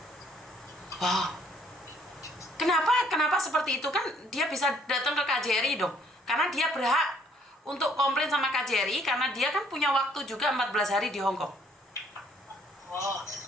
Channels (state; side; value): normal; both; correlation 0.63